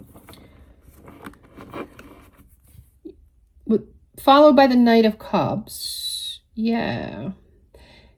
followed by the Knight of Cups, yeah.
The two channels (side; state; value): both; identical; correlation 1.00